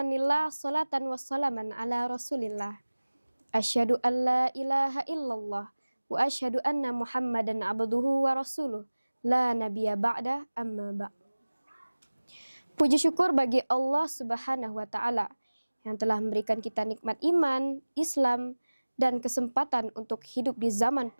salatan wa salaman ala rasulillah. Asyhadu an la ilaha illallah wa asyhadu anna muhammadan abduhu wa rasuluh. La nabiyya ba'da amma ba'. Puji syukur bagi Allah subhanahu wa ta'ala yang telah memberikan kita nikmat iman, Islam, dan kesempatan untuk hidup di zaman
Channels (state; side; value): inverted; both; correlation -1.00